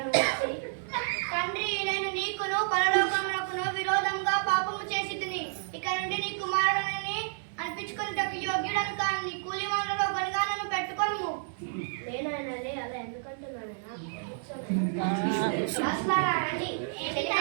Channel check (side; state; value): left; silent; digital silence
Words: నువ్వు వచ్చి? తండ్రి, నేను నీకును పరలోకమునకును విరోధంగా పాపము చేసి తిని ఇక నుండి నీ కుమారుడని అనిపించుకున్నటకు యోగ్యుడను కాను. నీ కూలి వాళ్ళలో ఒకరిగా నన్ను పెట్టుకోను. నేనైనాలే అలా ఎందుకంటున్నానైనా? రండి,